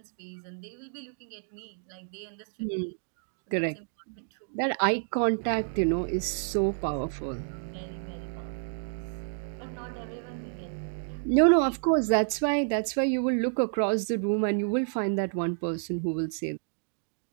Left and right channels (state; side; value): silent; left; digital silence